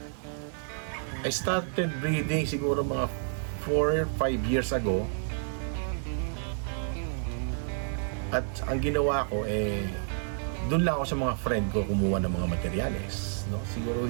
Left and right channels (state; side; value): silent; left; digital silence